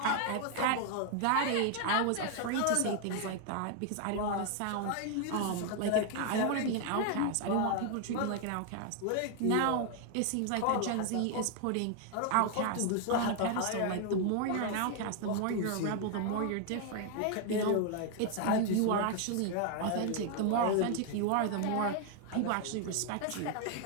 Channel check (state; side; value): different; both; correlation 0.00